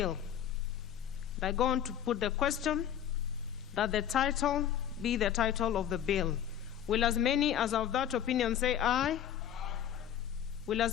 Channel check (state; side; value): quieter; right; 10.1 dB